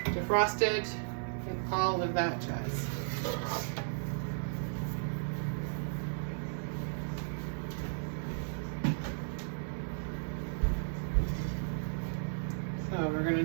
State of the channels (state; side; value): silent; left; digital silence